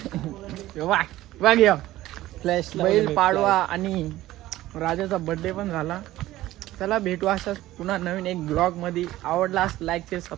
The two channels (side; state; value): left; quieter; 15.8 dB